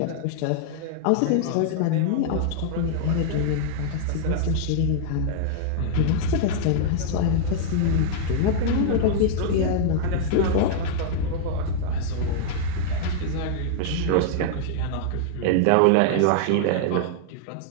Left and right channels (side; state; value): both; different; correlation -0.01